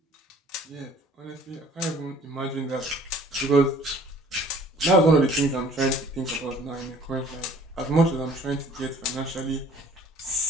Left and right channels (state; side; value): normal; both; correlation 0.54